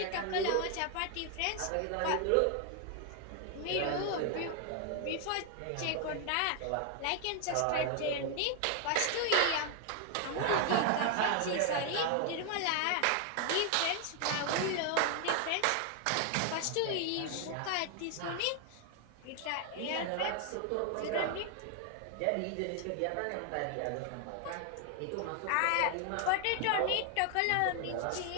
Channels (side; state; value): both; different; correlation 0.00